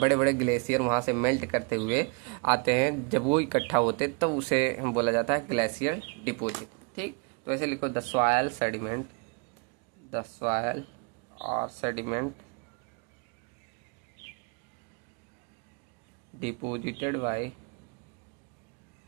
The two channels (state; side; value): quieter; left; 33.2 dB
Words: बड़े ग्लेशियर वहां से मेल्ट करते हुए आते हैं, जब वो इकट्ठा होते हैं तब उसे बोला जाता है ग्लेशियर डिपॉजिट। ठीक, तो ऐसे लिखो, the soil sediment, the soil और sediment deposited by